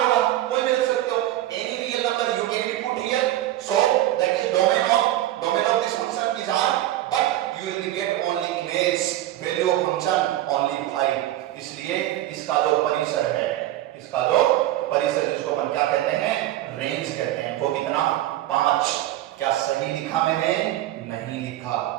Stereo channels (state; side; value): quieter; left; 14.3 dB